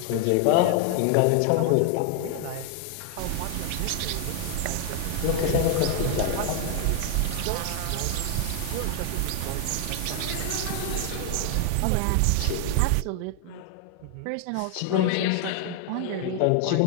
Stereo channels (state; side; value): different; both; correlation 0.00